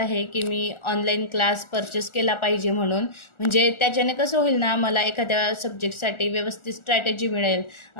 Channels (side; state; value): right; late; 1.4 ms